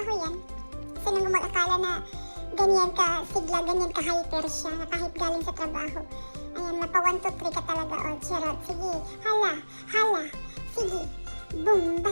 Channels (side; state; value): both; inverted; correlation -1.00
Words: yan. Sino mag-akala na ganyan ka sigla, ganyan ka hyper siya, na kahit galing sa trabaho. Ayan, mapa 1, 2, 3 ka talaga. O, charot. Sige, hala. Sige,